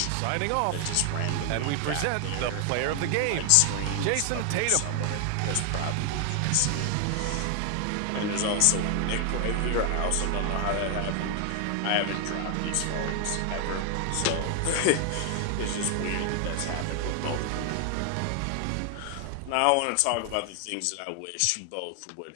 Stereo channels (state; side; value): different; both; correlation 0.00